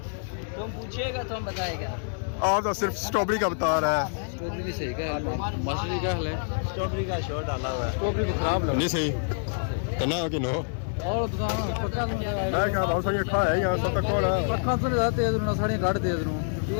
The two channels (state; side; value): silent; right; digital silence